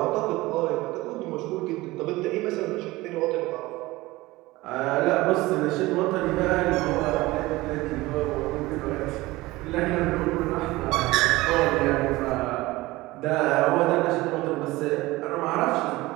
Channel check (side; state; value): left; quieter; 19.6 dB